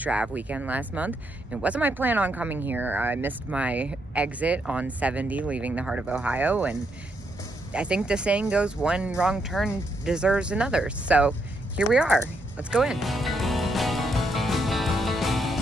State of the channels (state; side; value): normal; both; correlation 0.78